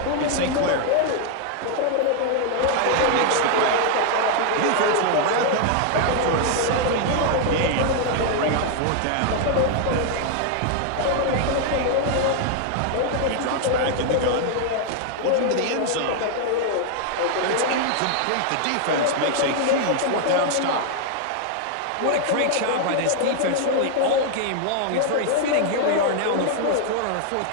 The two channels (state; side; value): different; both; correlation 0.00